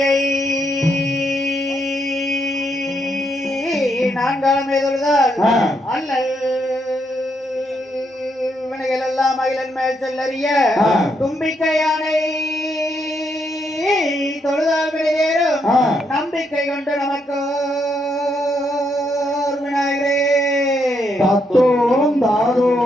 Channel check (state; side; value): normal; both; correlation 0.77